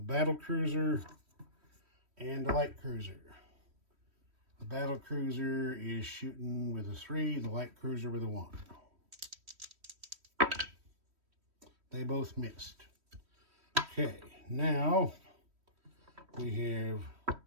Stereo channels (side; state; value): left; late; 3.1 ms